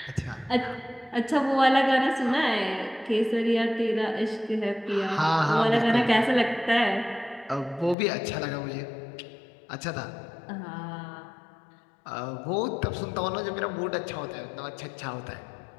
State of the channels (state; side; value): drops out; right; at 8.0 s